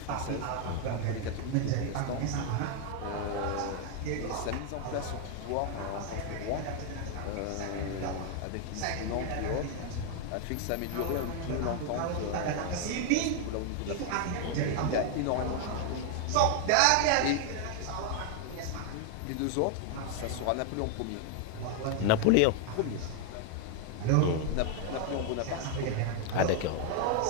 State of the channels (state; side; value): different; both; correlation 0.00